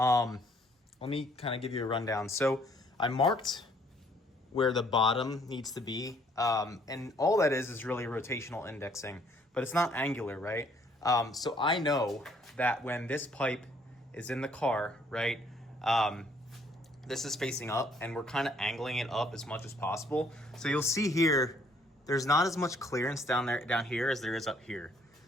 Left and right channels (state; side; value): normal; both; correlation 0.64